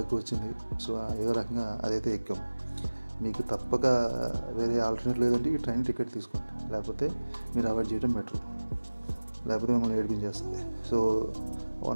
వచ్చింది. సో ఏదో రకంగా అదైతే ఎక్కాం. మీకు తప్పక వేరే ఆల్టర్నేట్ లేదంటే ఈ ట్రైన్ టికెట్ తీసుకోండి, లేకపోతే మీరు అవాయిడ్ చేయడం బెటర్, లేకపోతే మిమ్మల్ని ఏడిపించేస్తుంది. సో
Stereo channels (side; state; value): both; inverted; correlation -1.00